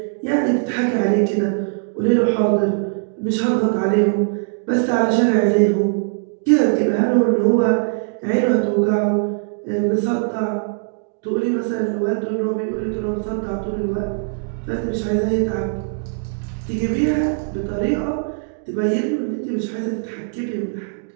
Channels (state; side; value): silent; left; digital silence